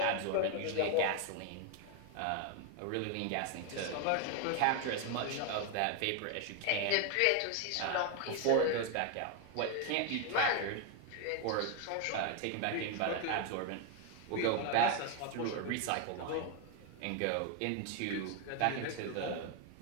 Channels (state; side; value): different; both; correlation 0.01